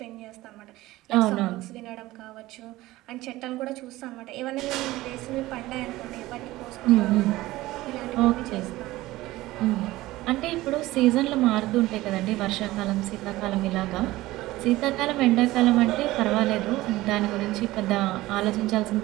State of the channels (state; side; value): quieter; left; 17.7 dB